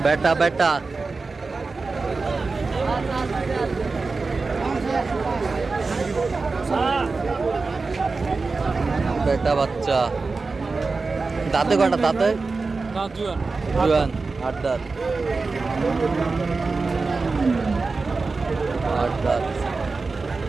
বেটা বেটা বেটা বাচ্চা। দাঁতে কটা? দাঁতে জুয়ান। 8 দাঁত। 8 দাঁত।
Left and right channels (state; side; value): quieter; left; 4.0 dB